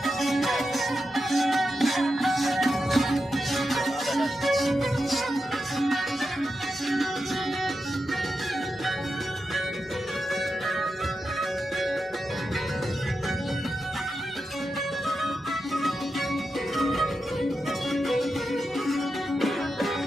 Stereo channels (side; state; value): both; normal; correlation 0.88